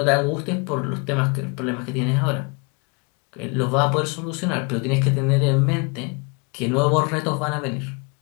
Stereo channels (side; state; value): right; quieter; 31.1 dB